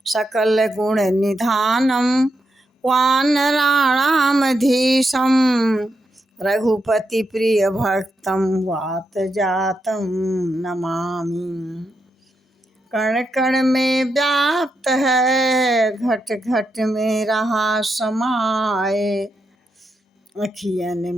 सकल गुण निधानं वानराणामधीशं रघुपति प्रिय भक्तं वात जातं नमामि। कण कण में व्याप्त है घट घट में रहा समाए, अखियन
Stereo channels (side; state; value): both; normal; correlation 0.84